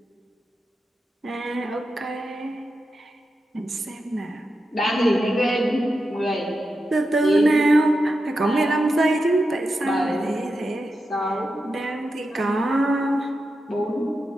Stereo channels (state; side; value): normal; both; correlation 0.89